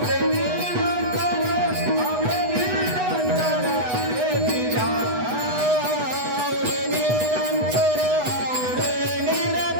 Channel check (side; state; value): left; late; 8.1 ms